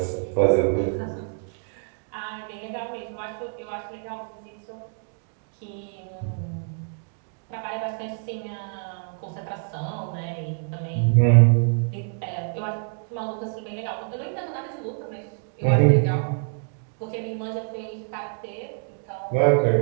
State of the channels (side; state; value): left; silent; 55 dB below the other